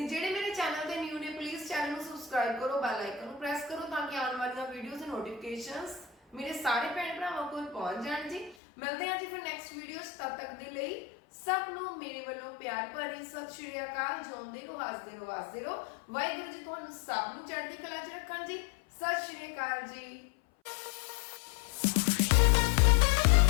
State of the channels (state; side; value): drops out; right; at 8.6 s